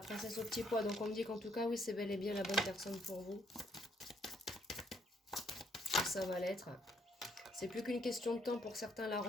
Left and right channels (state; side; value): normal; both; correlation 0.70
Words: au petit pois, donc on me dit qu'en tout cas, oui, c'est bel et bien la bonne personne pour vous. ça va l'être. C'est plus qu'une question de temps pour certains la